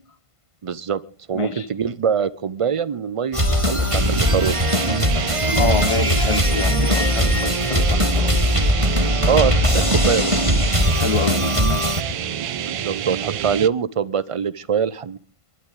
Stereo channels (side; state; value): left; late; 1.5 ms